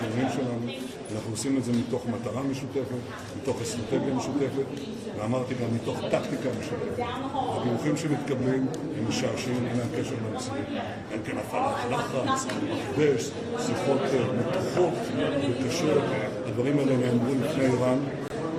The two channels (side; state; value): both; identical; correlation 1.00